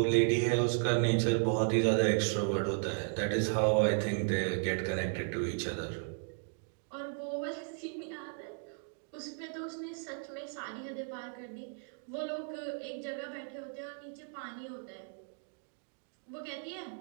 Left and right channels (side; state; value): left; silent; 55 dB below the other